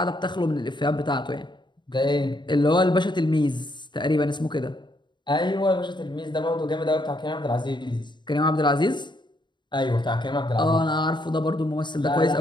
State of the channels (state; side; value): late; right; 0.22 ms